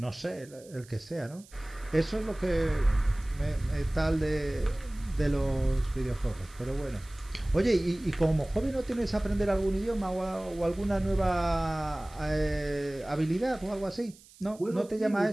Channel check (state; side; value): noise; right; hiss, 24 dB below the sound